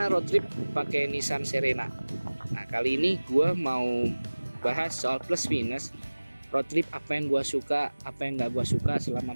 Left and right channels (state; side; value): inverted; both; correlation -1.00